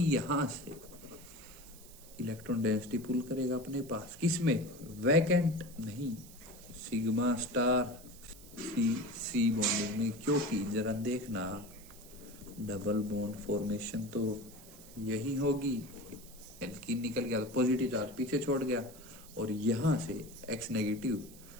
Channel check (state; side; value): noise; right; hiss, 19 dB below the sound